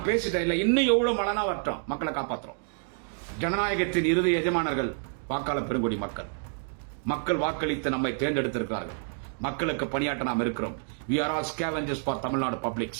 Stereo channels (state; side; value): silent; left; 59 dB below the other